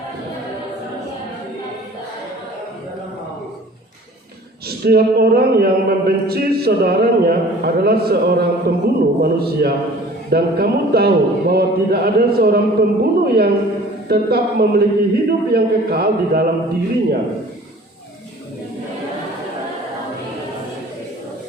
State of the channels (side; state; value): both; normal; correlation 0.47